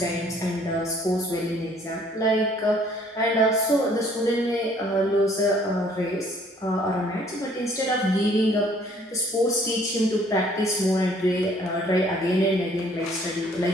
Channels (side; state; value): both; normal; correlation 0.59